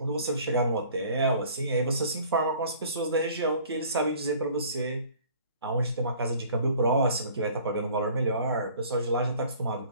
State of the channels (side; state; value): both; inverted; correlation -0.51